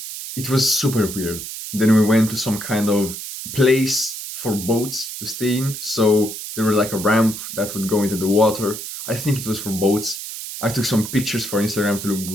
it was super weird. Then we went to some kind of place for boats to stay in, so there was like a ramp that would go into the water. I think it was for boats. I took some pictures for Instagram to look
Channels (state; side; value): noise; right; hiss, 8 dB below the sound